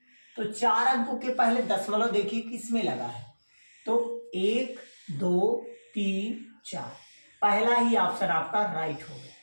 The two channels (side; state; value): both; inverted; correlation -1.00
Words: तो 4 अंकों के पहले दशमलव देखिए किसमें लगा है, तो 1 2 3 4, पहला ही ऑप्शन आपका राइट हो